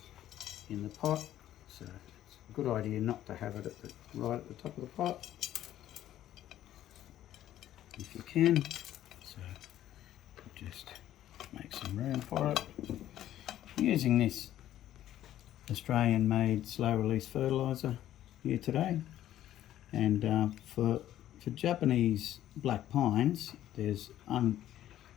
the pot. So it's a good idea not to have it right at the top of the pot, if you can. So just make some room for it. I'm using this Australian made slow release fertilizer here today, and for Japanese black pines, there's an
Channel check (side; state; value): right; quieter; 12.5 dB